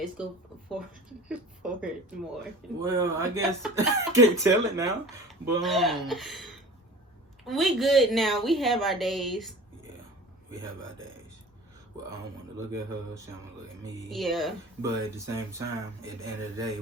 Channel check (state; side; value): normal; both; correlation 0.41